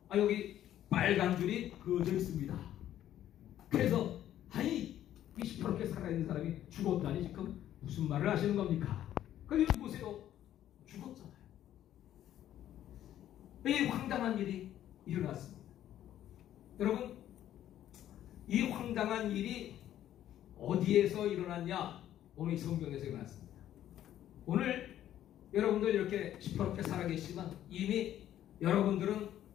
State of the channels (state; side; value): quieter; right; 11.9 dB